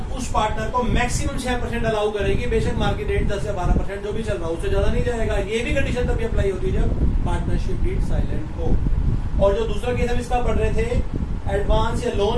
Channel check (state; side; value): identical; both; correlation 1.00